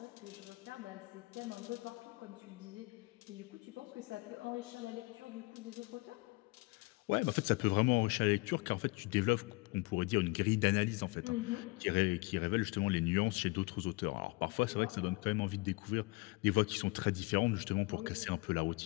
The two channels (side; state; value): right; quieter; 25.0 dB